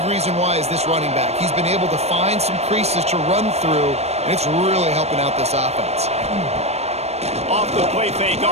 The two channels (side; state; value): left; late; 0.31 ms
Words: reason why is this running back. He's been able to find some creases to run through, and it's really helping out this offense. Off the play fake